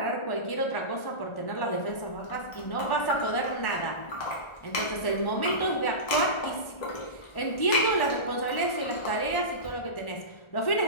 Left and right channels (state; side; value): late; right; 1.4 ms